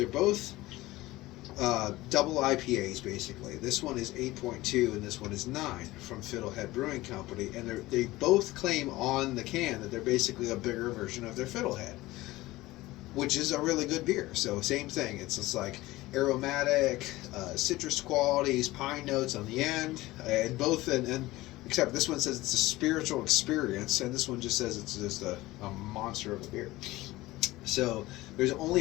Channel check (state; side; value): quieter; right; 18.5 dB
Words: both double IPAs basically. This one is 8.2 and this one is 9 from Fiddlehead Brewing Company, and they both claim on the can that they're basically a bigger version of their Fiddlehead, which is a really good beer. So same thing. It's just like aromatic, citrus qualities, pine notes on the end, and both. And except this one says it's a spiritual experience, and this one just says it's just a monster of a beer. So there's